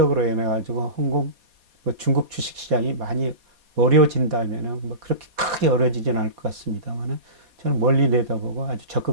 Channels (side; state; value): left; late; 4.2 ms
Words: 인해 가지고 홍콩, 중국 주식시장이 많이 어려워진다면은 뭐 그렇게 크게 어려워지지는 않을 것 같습니다만은 저는 멀리 내다보고 아주